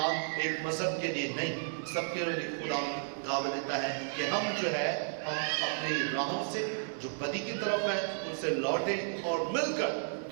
ایک مذہب کے لیے نہیں، سب کے لیے خدا دعوت دیتا ہے کہ ہم جو ہے ہم اپنی راہوں سے جو بدی کی طرف ہیں ان سے لوٹیں اور مل کر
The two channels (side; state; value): left; silent; digital silence